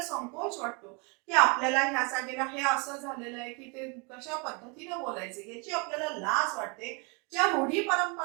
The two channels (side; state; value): left; quieter; 32.2 dB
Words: संकोच वाटतो की आपल्याला ह्या जागेला हे असं झालेलं आहे की ते कशा पद्धतीने बोलायचे याची आपल्याला लाज वाटते. ज्या रूढी